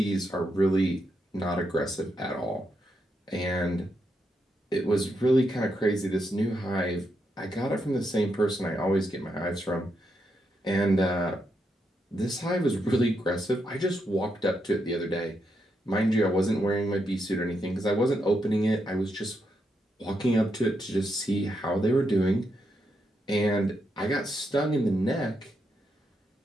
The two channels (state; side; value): normal; both; correlation 0.81